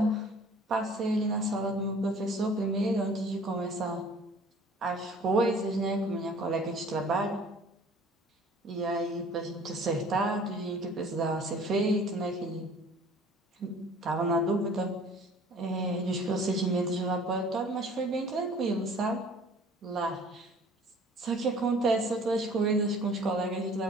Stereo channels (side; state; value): both; normal; correlation 0.50